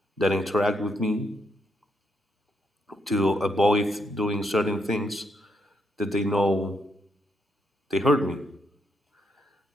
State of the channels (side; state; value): both; normal; correlation 0.78